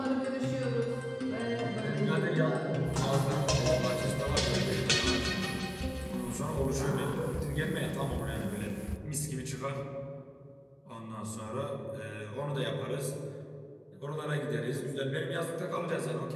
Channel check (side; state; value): both; identical; correlation 1.00